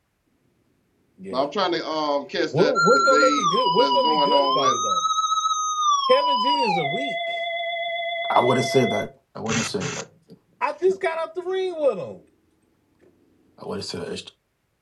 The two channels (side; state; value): both; identical; correlation 1.00